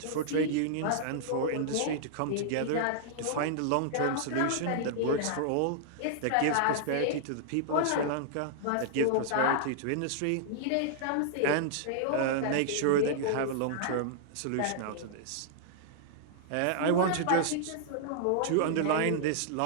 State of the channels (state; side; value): different; both; correlation -0.01